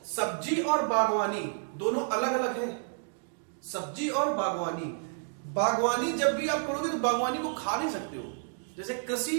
सब्जी और बागवानी दोनों अलग अलग है। सब्जी और बागवानी, बागवानी जब भी आप करोगे तो बागवानी को खा नहीं सकते हो। जैसे कृषि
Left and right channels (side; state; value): left; silent; digital silence